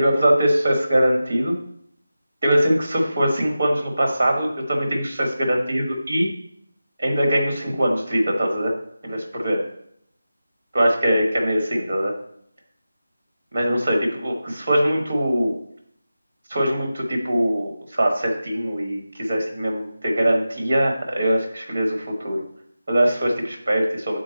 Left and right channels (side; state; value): both; inverted; correlation -0.93